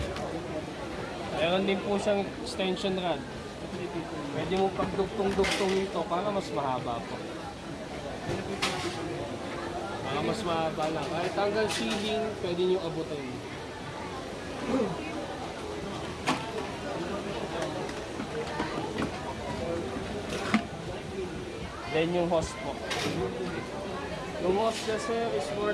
Meron din po siyang extension rod. Pwede mo pagdugtong-dugtong ito para mas mahaba po. Para mas mahaba lang. Kahit hanggang ceiling, pwede nyo abutin. Then yung hose po. Yung hose niya sir is more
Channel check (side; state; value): both; identical; correlation 1.00